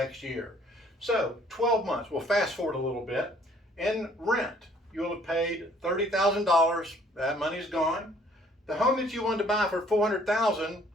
year. So 12 months, we'll fast forward a little bit. In rent, you'll have paid $30,000. That money's gone. The home that you wanted to buy for $400,000,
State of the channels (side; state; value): both; normal; correlation 0.60